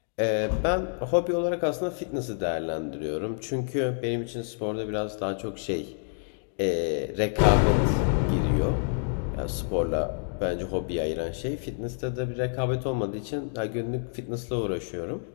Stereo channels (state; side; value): silent; right; digital silence